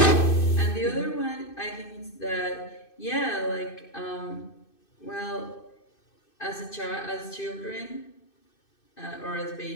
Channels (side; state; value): right; late; 2.6 ms